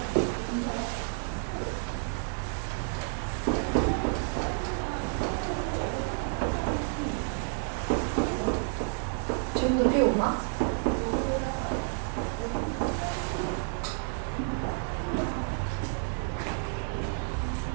지금도 비 오나?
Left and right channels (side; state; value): left; silent; 58 dB below the other